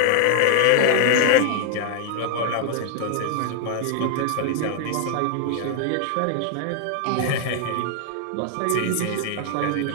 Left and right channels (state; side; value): different; both; correlation 0.00